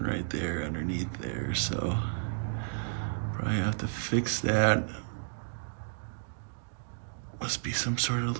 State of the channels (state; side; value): silent; left; digital silence